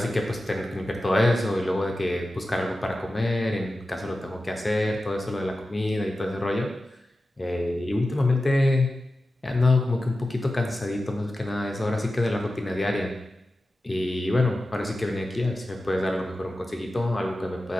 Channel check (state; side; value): normal; both; correlation 0.93